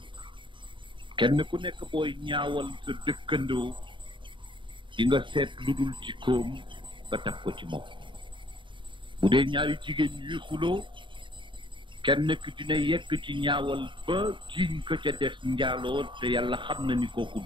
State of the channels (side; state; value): left; late; 0.23 ms